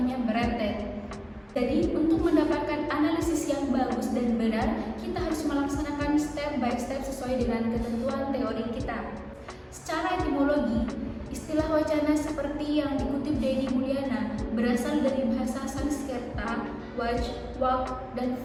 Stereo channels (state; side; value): identical; both; correlation 1.00